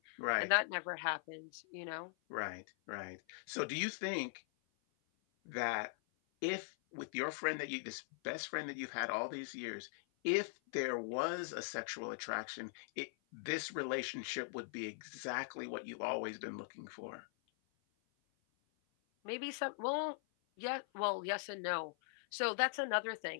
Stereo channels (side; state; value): right; silent; 50 dB below the other